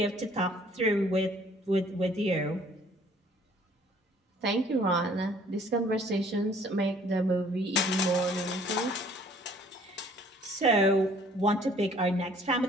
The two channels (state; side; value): normal; both; correlation 0.57